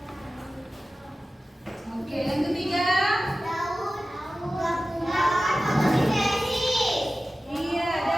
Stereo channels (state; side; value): normal; both; correlation 0.95